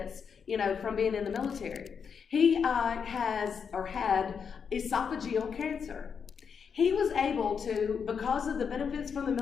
from being in the military. He had esophageal cancer. He was able to, because of the benefits from the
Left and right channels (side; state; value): right; quieter; 6.5 dB